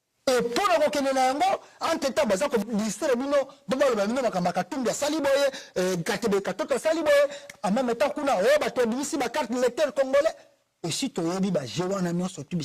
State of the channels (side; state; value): both; identical; correlation 1.00